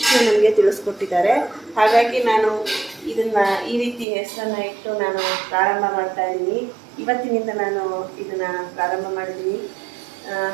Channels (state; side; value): drops out; left; at 4.0 s